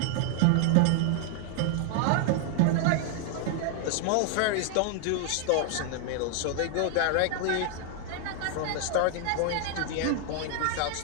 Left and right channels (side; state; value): both; different; correlation 0.00